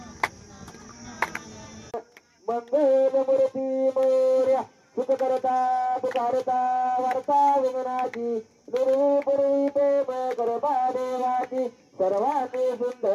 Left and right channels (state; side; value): identical; both; correlation 1.00